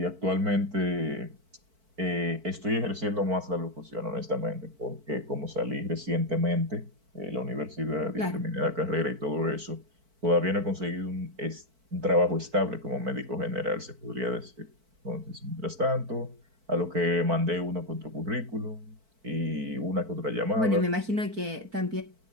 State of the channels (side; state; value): left; late; 4.5 ms